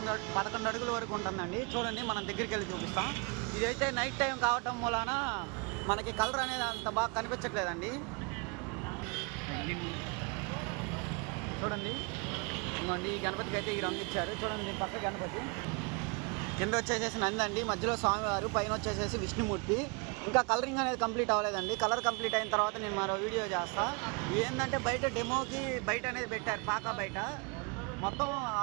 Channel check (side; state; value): left; quieter; 31.7 dB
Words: అడుగుల వరకు ఉంటుందండి. చూడండి, మనం దగ్గరికి వెళ్ళి చూపిస్తాం. ఇదైతే నైట్ టైం కావటం మూలాన మనకి కలర్ అనేది అంత బాగా కనిపించట్లేదండి. చూడండి, ఈ గణపతికి అయితే ఈ రంగు ఇచ్చారు. చూడండి, పక్క గణపతి కింద వచ్చేసేసి నంది అండి, మధ్యలో స్వామివారు, పైన వచ్చేసేసి విష్ణుమూర్తి. ఇంకా కలరింగ్ అనేది కంప్లీట్ అవ్వలేదండి. కలర్ కంప్లీట్ అయిన తర్వాత నేను మరో వీడియో చేస్తా. ఏంటంటే బయట డెమోకి బయట అనేది పెట్టారు, పాక బయట మొత్తం